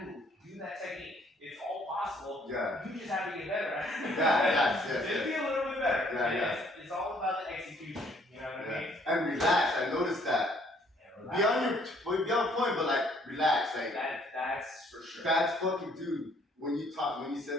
move, do that technique. It's all possible. Yeah. You just have to get better at it. Yes. Just be a little bit better. Yeah. It's all about the execution. You know what I mean? And relax. I noticed that. Be on point, but like relax. Like that's for sure. That's fucking dude. When you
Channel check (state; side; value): normal; both; correlation 0.63